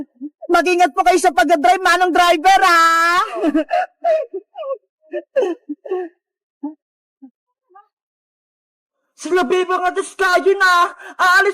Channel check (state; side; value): identical; both; correlation 1.00